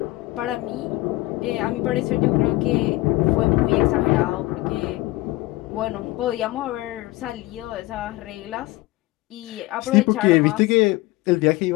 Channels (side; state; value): right; quieter; 19.6 dB